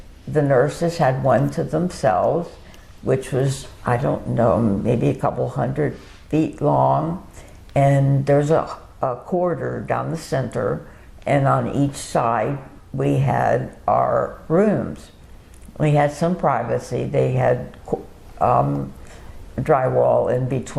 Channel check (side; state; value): both; identical; correlation 1.00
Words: the nurses had one to themselves, which was, I don't know, maybe a couple 100 feet long. And there's a corridor down the center, and on each side we had our rooms. We had some privacy. They had drywall in